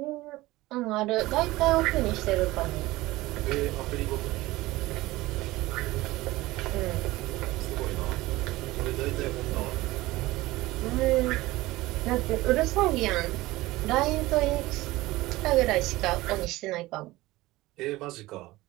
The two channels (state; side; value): quieter; left; 18.8 dB